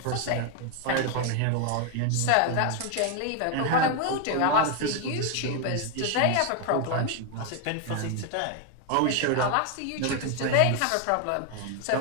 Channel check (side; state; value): both; different; correlation 0.01